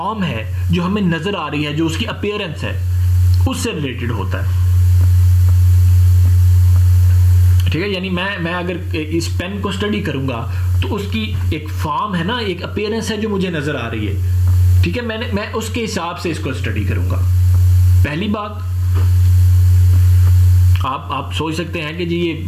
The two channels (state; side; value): identical; both; correlation 1.00